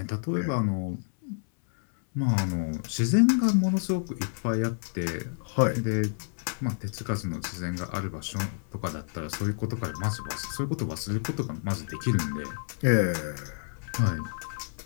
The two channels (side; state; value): right; silent; 59 dB below the other